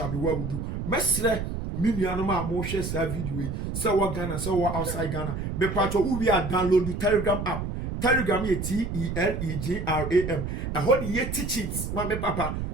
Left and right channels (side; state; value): right; noise; rumble, 4 dB below the sound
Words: be well with you. Mesre Minianoma mo share sa video. So what Ghana, so what outside Ghana. Me patcho we are download the Telegram app. Telegram ye Telegram. I hold ye teachings. Ma me papa.